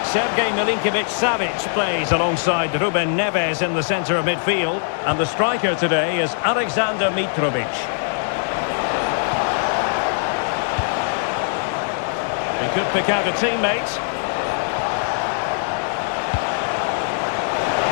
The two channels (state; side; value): silent; right; digital silence